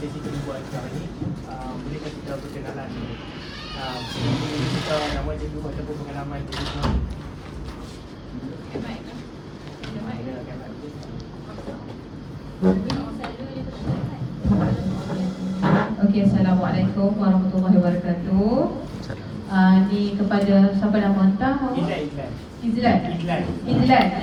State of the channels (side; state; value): both; identical; correlation 1.00